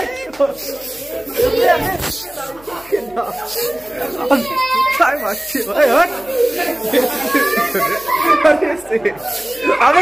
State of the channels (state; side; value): noise; left; hum, 25 dB below the sound